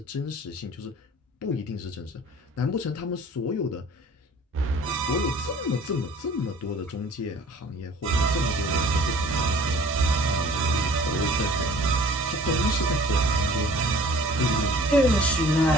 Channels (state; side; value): normal; both; correlation 0.49